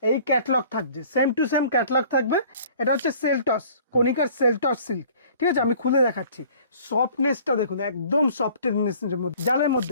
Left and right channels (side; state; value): both; inverted; correlation -0.51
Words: এই ক্যাটলগ থাকছে, সেম টু সেম ক্যাটলগ থাকবে। এটা হচ্ছে সেলটস, কনিকার সেলটস সিল্ক, ঠিক আছে, আমি খুলে দেখাচ্ছি। সফটনেসটা দেখুন, একদম সফটনেসের মধ্যে, জালের